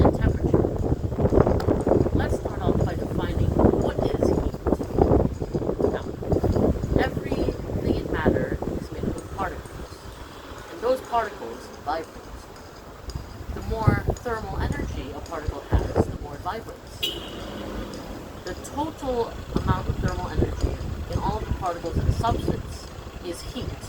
temperature. Let's start off by defining what is heat. Now, everything in matter is made up of particles, and those particles vibrate. The more thermal energy a particle has, the more it vibrates. The total amount of thermal energy in all of the particles in a substance is heat.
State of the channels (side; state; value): both; identical; correlation 1.00